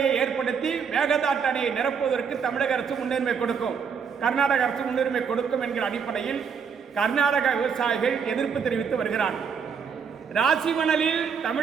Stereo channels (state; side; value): quieter; left; 6.4 dB